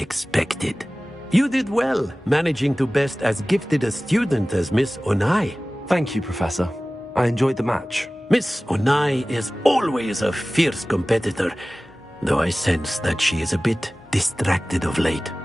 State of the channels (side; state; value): both; normal; correlation 0.97